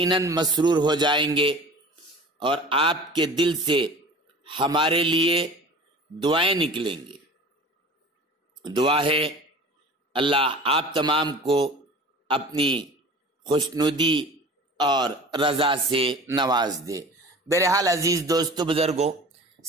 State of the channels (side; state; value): both; normal; correlation 0.40